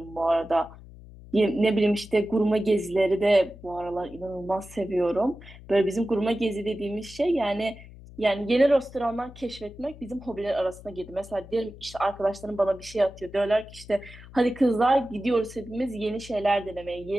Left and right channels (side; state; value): left; noise; hum, 18 dB below the sound